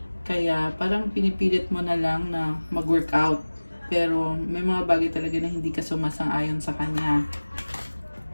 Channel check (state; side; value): inverted; both; correlation -1.00